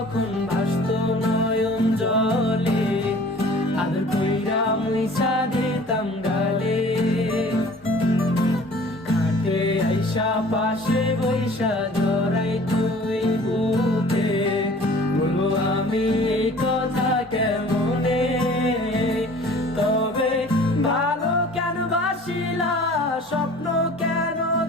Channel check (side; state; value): both; normal; correlation 0.48